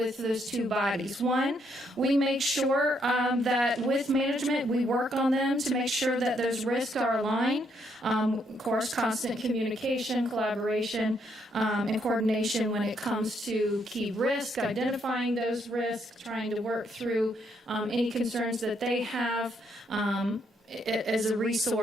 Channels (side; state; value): both; normal; correlation 0.74